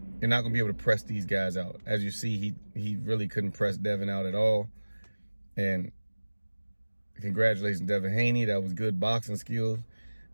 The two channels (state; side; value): inverted; both; correlation -1.00